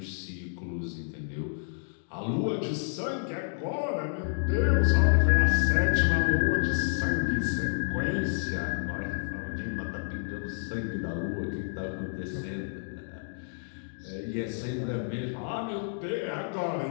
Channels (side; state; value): right; silent; digital silence